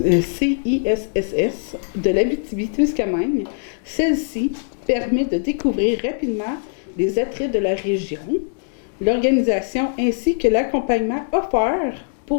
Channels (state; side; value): silent; right; digital silence